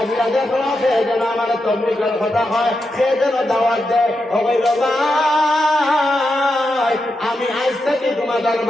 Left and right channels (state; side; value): normal; both; correlation 0.86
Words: দেখলো সে যেন আমার তবলিগের কথা হয়, সে যেন দাওয়াত দেয়। আমি আজ থেকে তোমাদের